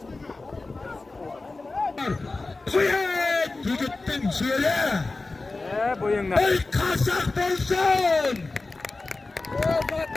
Kuyet yigittin şöyle. Bo'yingdan. Ey kaşak bolsun.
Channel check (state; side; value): quieter; right; 3.4 dB